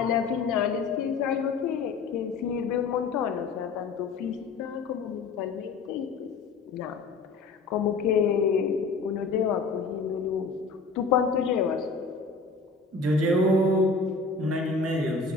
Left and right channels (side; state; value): right; quieter; 4.2 dB